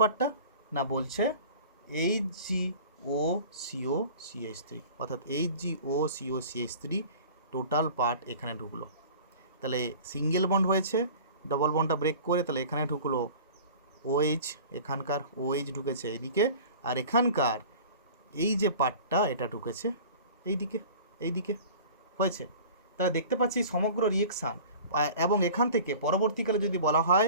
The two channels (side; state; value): both; inverted; correlation -0.42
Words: না বলছে HgOCOCH3, অর্থাৎ HgOCOCH3 টোটাল পার্ট এখানে ঢুকলো। তাহলে সিঙ্গেল বন্ড হয়েছে, ডবল বন্ডটা ব্রেক করে, তাহলে এখানে ঢুকলো OH, এখানকার OH ঢুকেছে এইদিকে, আর এখানকার এই যে পার্টটা এটা ঢুকেছে এইদিকে হয়েছে। তাহলে দেখতে পাচ্ছি সমগ্র রিয়েকশান। এবং এখান থেকে পরবর্তীকালে যদি বলা হয়